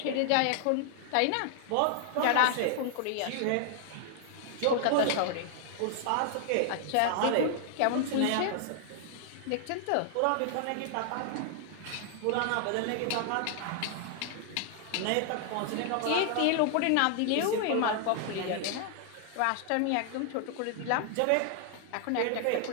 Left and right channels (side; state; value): both; different; correlation 0.00